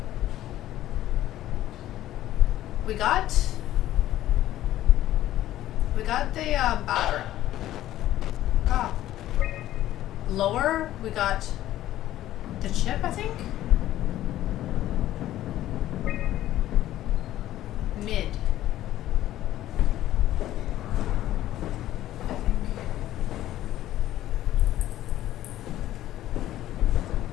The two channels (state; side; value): quieter; right; 13.7 dB